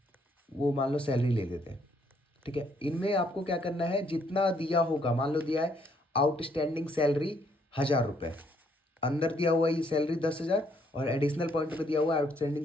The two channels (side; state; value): both; normal; correlation 0.69